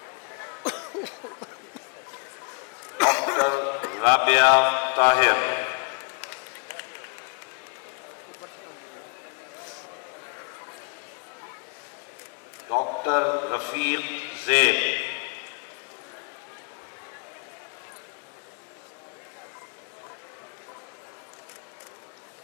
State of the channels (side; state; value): right; quieter; 35.0 dB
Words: डॉक्टर राबिया ताहिर, डॉक्टर रफीक ज़ैद,